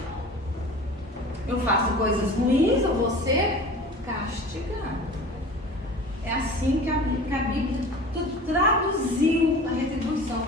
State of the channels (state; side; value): normal; both; correlation 0.39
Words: Eu faço coisas ruins, eu vou ser castigado. É assim que a Bíblia traduziu a retribuição.